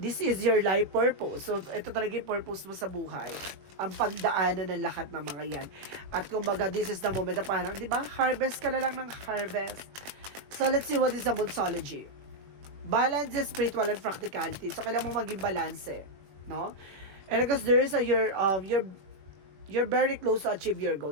is your life purpose. So, ito talaga yung purpose mo sa buhay. Ang pagdaanan ng lahat ng mga yan. At kumbaga, this is the moment na parang, di ba, harvest ka na lang ng harvest. So, let's see what is the Monsology. Balance is spiritual and practicality. So, kailangan mo maging balance, no? And because there is a, you're very close to achieve your goal.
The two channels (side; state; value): left; late; 21 ms